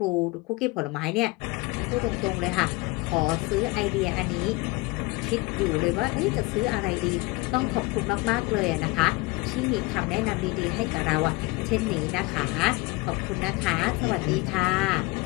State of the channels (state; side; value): quieter; right; 22.5 dB